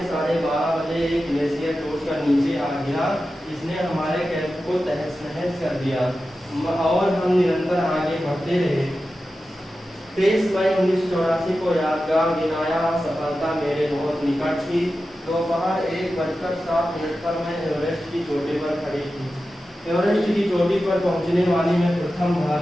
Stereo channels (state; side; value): normal; both; correlation 0.93